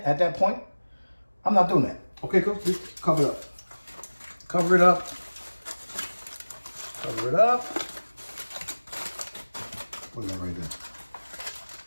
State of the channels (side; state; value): both; inverted; correlation -1.00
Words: at that point. I'm not doing that. Okay, cooks? Just cover it up. Cover it up. Cover it up. Look at that right there.